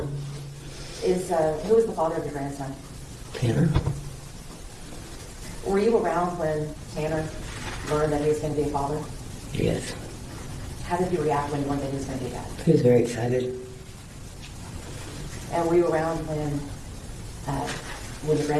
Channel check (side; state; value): both; identical; correlation 1.00